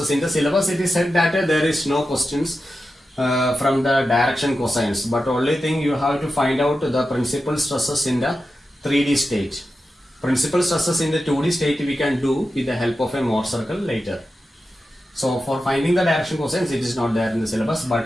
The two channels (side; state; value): both; normal; correlation 0.91